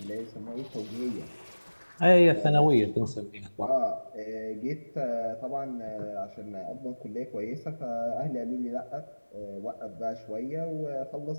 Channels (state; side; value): inverted; both; correlation -1.00